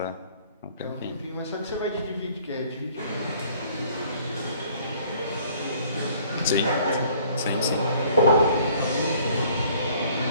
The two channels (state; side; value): inverted; both; correlation -0.57